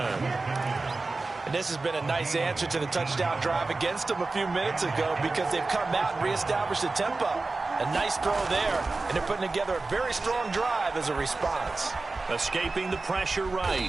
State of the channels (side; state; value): left; quieter; 3.6 dB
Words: And this has been a nice answer to the touchdown drive against them a few minutes ago because they've come out and reestablished the tempo. A nice throw there, and they're putting together a very strong drive as a response. Escaping the pressure